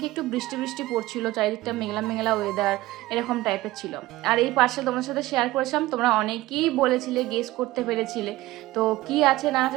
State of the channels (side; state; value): left; quieter; 17.9 dB